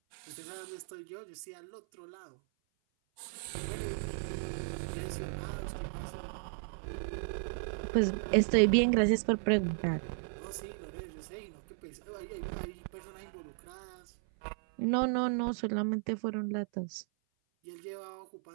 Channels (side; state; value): left; silent; 54 dB below the other